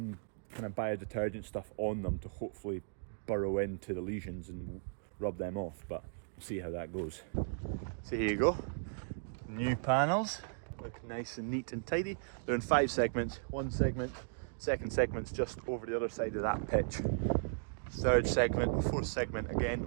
kind of biodetergent stuff on them to hopefully burrow into the lesions and rub them off, but we'll see how that goes. So here you go, new panels, look nice and neat and tidy. They're in 5 segments, one segment, second segment's just over the other side of that pitch. Third segment, fourth segment again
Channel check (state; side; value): silent; left; digital silence